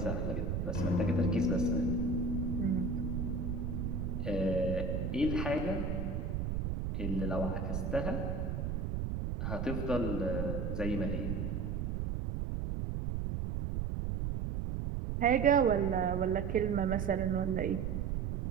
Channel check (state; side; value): noise; right; rumble, 1 dB below the sound